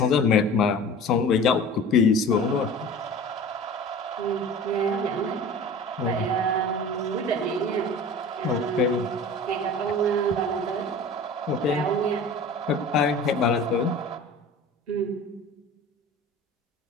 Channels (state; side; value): normal; both; correlation 0.39